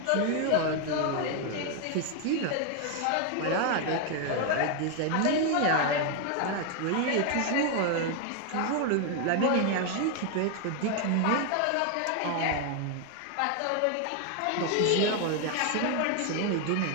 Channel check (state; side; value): different; both; correlation 0.01